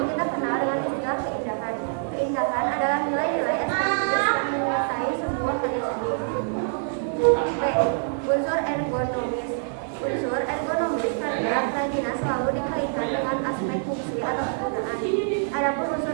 kita kenal dengan istilah keindahan. Keindahan adalah nilai-nilai estetis yang menyertai sebuah karya seni. B. Unsur ergonomis. Unsur ergonomis karena kerajinan selalu dikaitkan dengan aspek fungsi atau kegunaan. Adapun unsur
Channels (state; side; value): silent; left; 57 dB below the other